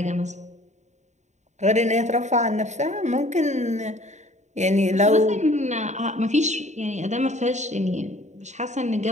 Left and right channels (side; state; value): left; late; 0.34 ms